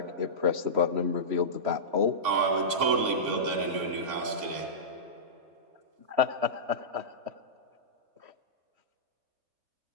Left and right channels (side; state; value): left; late; 3.5 ms